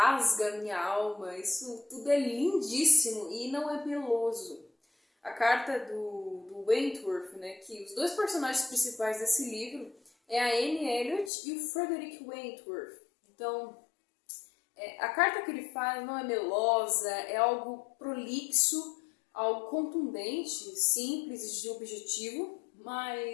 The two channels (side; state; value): right; drops out; at 11.3 s